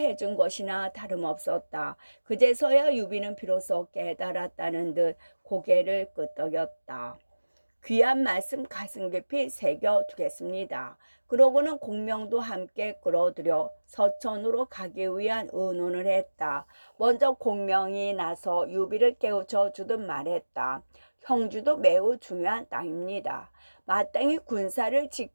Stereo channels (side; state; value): both; inverted; correlation -1.00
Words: 것이나 다름없었다. 그제서야 유비는 비로소 깨달았다는 듯 고개를 끄덕였다. 귀한 말씀 가슴 깊이 새겨두겠습니다. 그러고는 공명도 함께 끌어들여 서천으로 가기 위한 의논을 했다. 먼저 공명이 나서 유비를 깨우쳐 주듯 말했다. 형주도 매우 중요한 땅입니다.